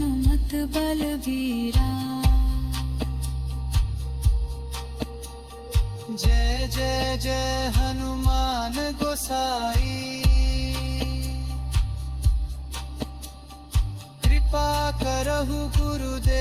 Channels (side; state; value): both; identical; correlation 1.00